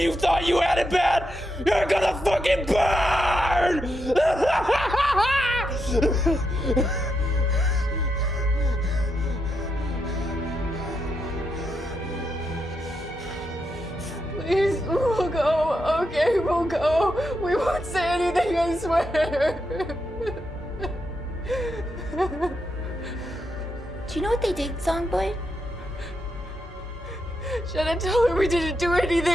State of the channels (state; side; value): normal; both; correlation 0.83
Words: thought you had it bad? You're gonna fucking burn! Please, we'll go. Okay, we'll go. We won't say anything, I swear. Do you know what they did, Songbird? Shannon, tell her we didn't do